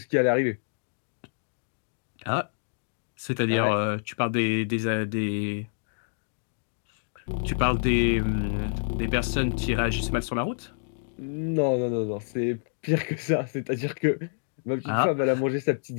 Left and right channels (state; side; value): silent; right; digital silence